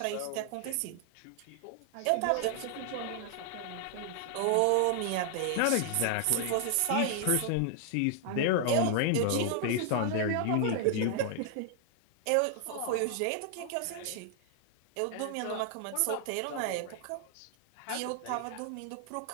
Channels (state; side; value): different; both; correlation 0.00